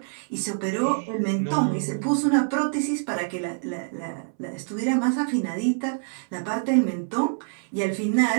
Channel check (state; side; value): silent; left; 61 dB below the other